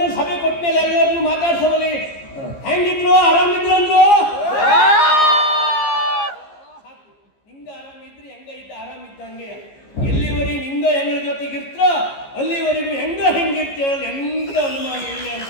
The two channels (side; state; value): right; late; 15 ms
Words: ಸಭೆ ಕೊಟ್ಟ ಮೇಲೆ ಎಲ್ಲರನ್ನು ಮಾತಾಡ್ಸೋವಲ್ಲಿ ಹೆಂಗಿದ್ರು ಆರಾಮಿದ್ರು ಅಂದ್ರು. ನಿಂಗ ಆರಾಮಿದ್ರಿ ಹೆಂಗ ಇದ್ದ ಆರಾಮಿದ್ದಂಗೆ. ಎಲ್ಲಿವರೆಗೆ ನಿಂಗ ಹೆಂಗ ಜೊತೆಗಿರ್ತ ಅಲ್ಲಿವರೆಗೂ ಹೆಂಗಿರ್ತೇವಲ್ಲ ಎಂತ ಅನುಮಾನ ಇಲ್ಲ